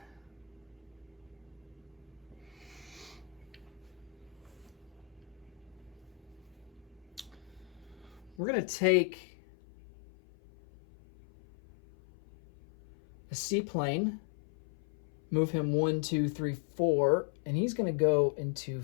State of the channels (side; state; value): right; drops out; at 8.3 s